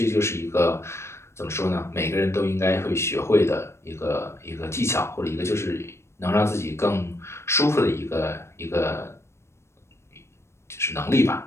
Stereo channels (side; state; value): right; late; 0.13 ms